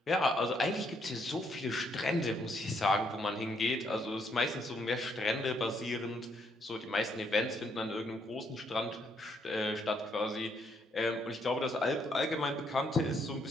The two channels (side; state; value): both; normal; correlation 0.72